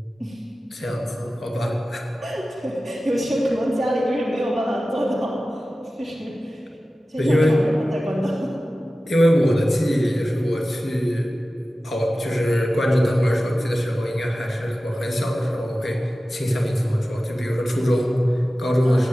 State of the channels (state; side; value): normal; both; correlation 0.95